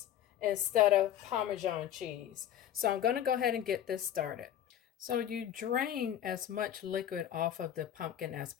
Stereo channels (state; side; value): quieter; right; 10.7 dB